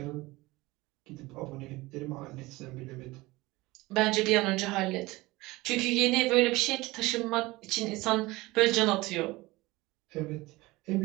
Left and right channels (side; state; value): left; quieter; 20.8 dB